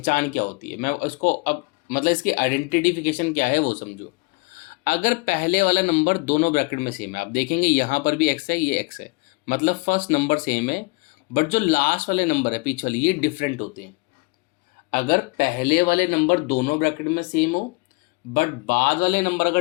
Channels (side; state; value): right; quieter; 27.6 dB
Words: क्या होती है, मैं इसको अब मतलब इसकी आइडेंटिफिकेशन क्या है वो समझो। अगर पहले वाला नंबर दोनों ब्रैकेट में सेम है, आप देखेंगे यहाँ पर भी x है, ये x है, मतलब फर्स्ट नंबर सेम है, बट जो लास्ट वाले नंबर है पीछे वाले ये डिफरेंट होते हैं। अगर पहले वाले नंबर दोनों ब्रैकेट में सेम हो बट बाद वाले नंबर